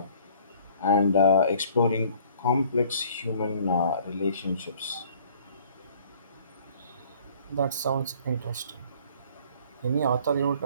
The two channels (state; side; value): inverted; both; correlation -0.55